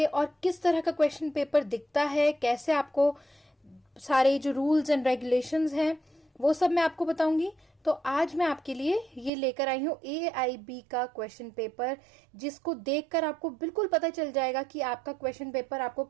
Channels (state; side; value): drops out; left; at 9.3 s